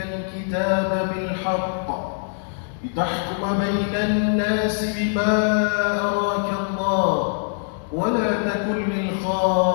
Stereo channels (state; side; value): silent; right; digital silence